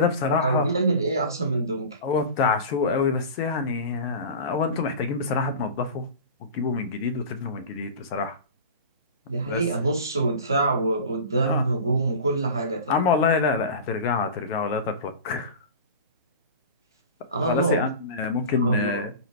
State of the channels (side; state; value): both; inverted; correlation -0.33